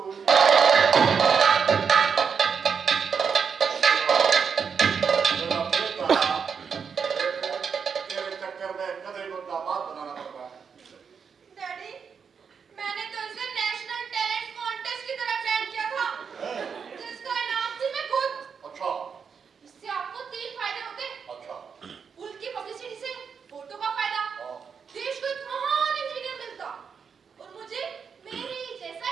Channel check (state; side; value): quieter; left; 6.4 dB